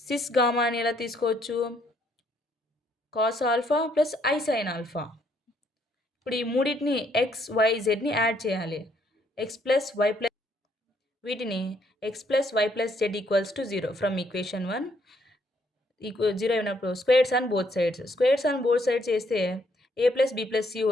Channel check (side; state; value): both; normal; correlation 0.69